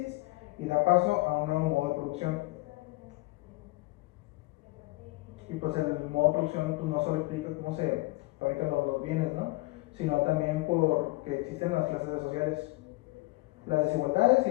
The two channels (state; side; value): quieter; right; 22.0 dB